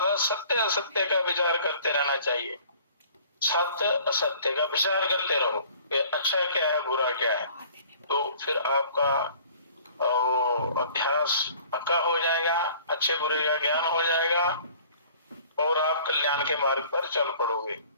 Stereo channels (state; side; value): inverted; both; correlation -0.51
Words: सत्य असत्य का विचार करते रहना चाहिए। सत्य असत्य का विचार करते रहो कि अच्छा क्या है बुरा क्या है, तो फिर आपका अभ्यास पक्का हो जाएगा, अच्छे बुरे का ज्ञान हो जाएगा और आप कल्याण के मार्ग पर चल पड़ोगे।